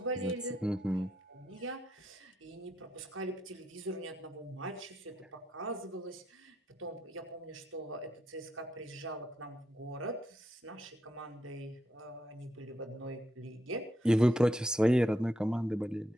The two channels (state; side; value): normal; both; correlation 0.80